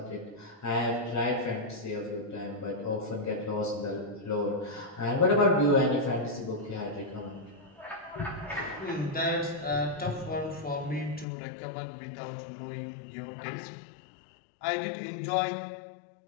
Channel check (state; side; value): drops out; right; at 11.2 s